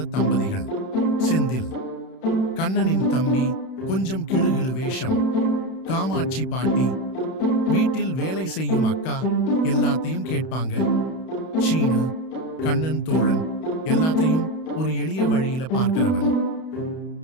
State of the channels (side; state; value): right; late; 31 ms